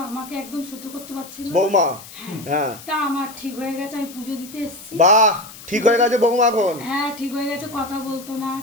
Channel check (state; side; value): noise; left; hiss, 17 dB below the sound